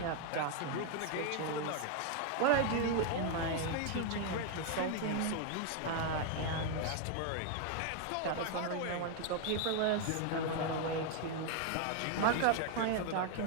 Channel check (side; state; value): both; different; correlation 0.01